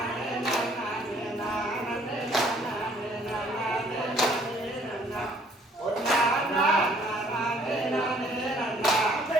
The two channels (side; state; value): both; normal; correlation 0.61